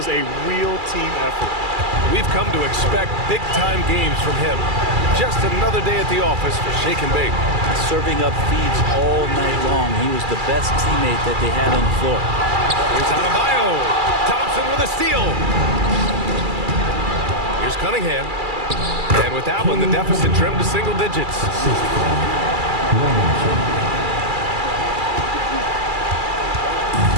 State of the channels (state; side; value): late; left; 2.3 ms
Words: a real team effort. We've come to expect big-time games from him. Just another day at the office for Shake and Bake. Serving up feeds all night long. He was the best teammate that they had on the floor. Here's Adebayo. Thompson with a steal. Here's Cunningham. And with that one, the deficit trimmed to single digits.